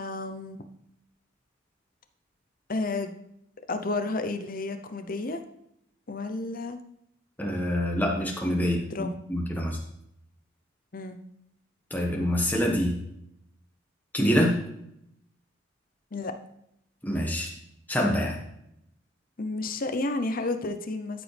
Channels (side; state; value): both; normal; correlation 0.66